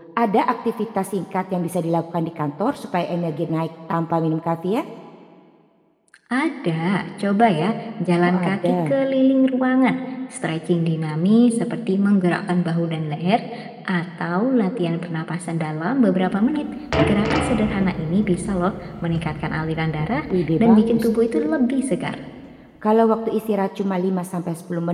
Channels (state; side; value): identical; both; correlation 1.00